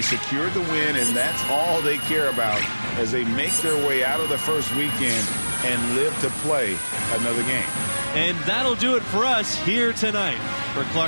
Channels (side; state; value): both; inverted; correlation -1.00